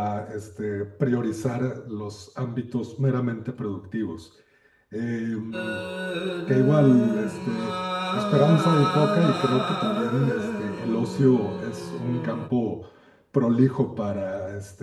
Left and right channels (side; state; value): both; identical; correlation 1.00